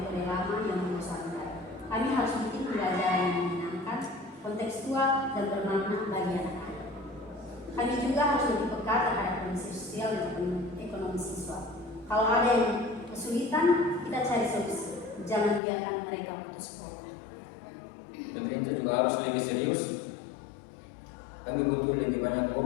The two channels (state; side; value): drops out; right; at 15.6 s